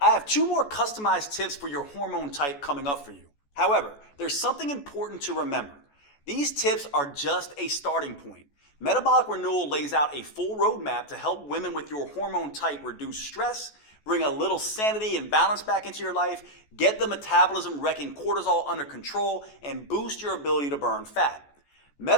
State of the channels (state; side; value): late; right; 14 ms